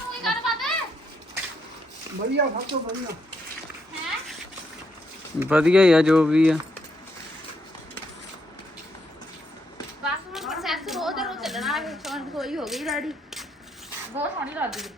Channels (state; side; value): normal; both; correlation 0.76